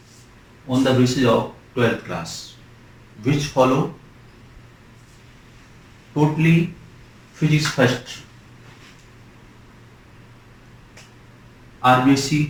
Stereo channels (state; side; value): identical; both; correlation 1.00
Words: on the basis of 12th class, which follow totally physics first, RBSc